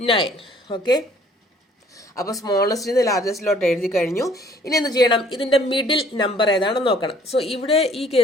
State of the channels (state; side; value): normal; both; correlation 0.57